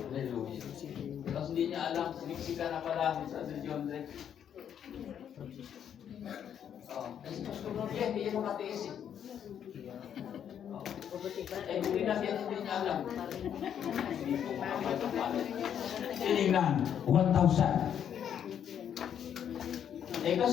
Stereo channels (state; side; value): quieter; right; 9.0 dB